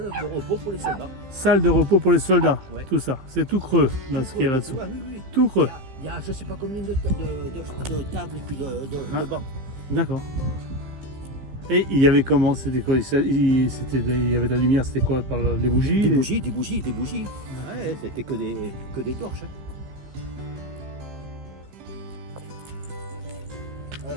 de repos pour les soldats. Salle de repos pour les soldats, Ouais. tout ça. C'est tout creux, là, ce qu'il y a là-dessous. Oui, oui. Tout creux. Il y a je ne sais pas combien de tables et puis de bancs. D'accord. Et il y avait comment? C'était quoi? Il y avait de la lumière, c'était quoi? Par les bougies? Des bougies. Ouais, c'était que des torches. Ah,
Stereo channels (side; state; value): left; late; 15 ms